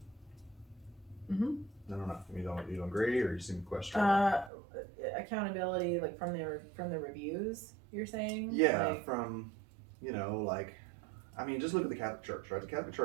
I don't know. You don't agree, or you seem to question? Accountability, from the reviews, you're saying? Yeah, from just look at the Catholic Church, right? The Catholic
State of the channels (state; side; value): drops out; left; at 4.5 s